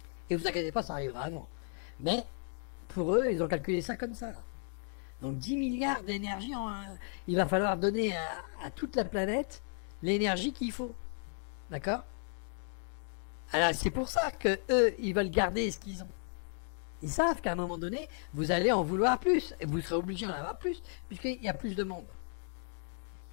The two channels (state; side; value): silent; right; 55 dB below the other